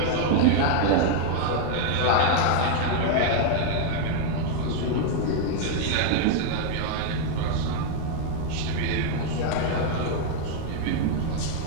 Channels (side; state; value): both; different; correlation 0.00